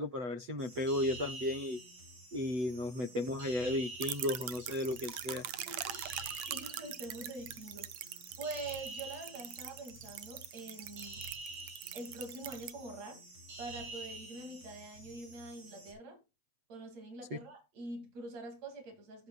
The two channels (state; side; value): late; left; 8.2 ms